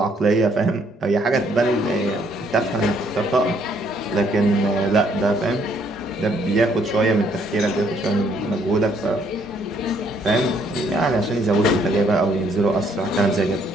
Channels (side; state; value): both; normal; correlation 0.67